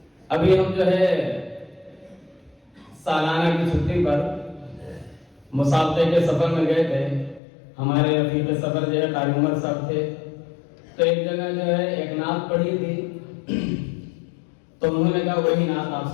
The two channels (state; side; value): drops out; right; at 7.4 s